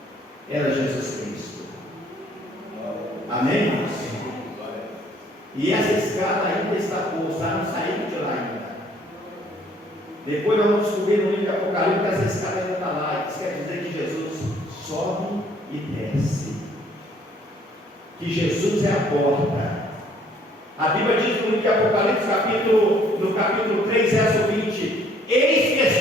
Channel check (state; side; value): normal; both; correlation 0.61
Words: era Jesus Cristo. Amém, irmãos? E essa escada ainda está posta, não saiu de lá ainda. Depois nós vamos descobrir no livro de Apocalipse que essa escada ainda está lá. Isso quer dizer que Jesus sobe e desce. Que Jesus é a porta. A Bíblia diz no livro de Apocalipse, no capítulo 3, verso 20: eis que